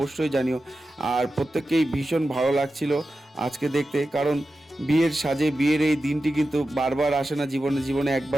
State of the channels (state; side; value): normal; both; correlation 0.92